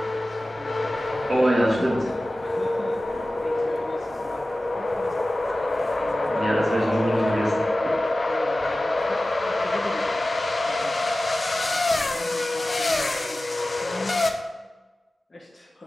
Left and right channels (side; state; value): both; normal; correlation 0.96